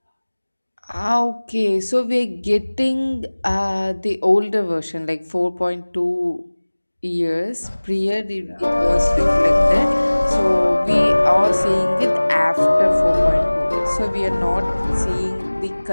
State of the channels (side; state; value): both; inverted; correlation -1.00